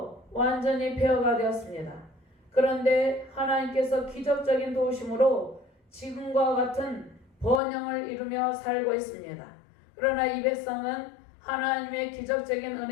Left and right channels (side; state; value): right; drops out; at 7.6 s